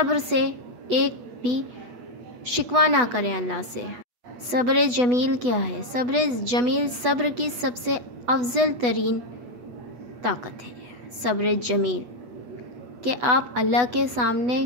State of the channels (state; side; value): late; left; 8.2 ms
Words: سے ایک بھی شکوہ نہ کریں اللہ سے۔ صبر جمیل کیا ہے؟ صبر جمیل صبر کی سب سے افضل ترین طاقت ہے۔ صبر جمیل کہ آپ اللہ کے سامنے